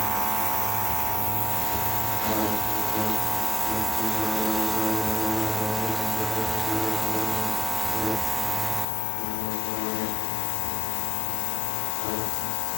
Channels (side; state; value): right; drops out; at 8.8 s